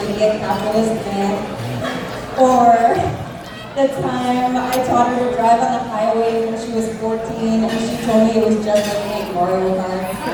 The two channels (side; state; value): both; identical; correlation 1.00